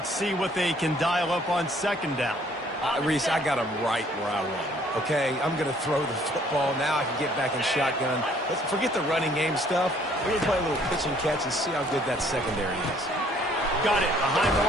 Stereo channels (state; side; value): normal; both; correlation 0.61